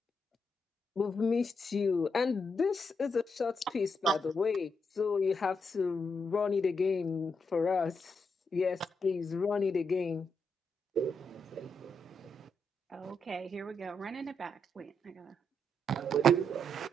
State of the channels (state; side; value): normal; both; correlation 0.81